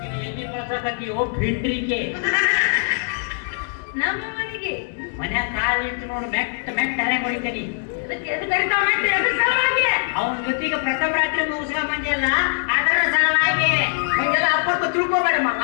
ಭಿಂಡ್ರಿಗೆ ನಮ್ಮ ಮನೆಗೆ ಮನ್ಯಾಗ ಕಾಲಿಟ್ಟು ನೋಡು ಮೆಟ್ಟ ಹರ್ಯಾಗ ಹೊಡಿತೇನಿ. ಅವನ ಜೊತೆಗೆ ಪ್ರಥಮ ರಾತ್ರಿ ಮುಗಿಸ್ಕೊಂಡ್ ಬಂದಿಲ್ಲ ಅದರ ಸಲುವಾಗಿ ಹಂಗೆಲ್ಲ ಅಪ್ಪಟ್ಟು ತಿಳ್ಕೋಬೇಡ ಮಗ.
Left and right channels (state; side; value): silent; right; digital silence